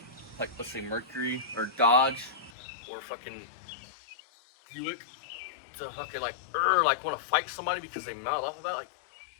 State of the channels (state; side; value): drops out; right; at 2.5 s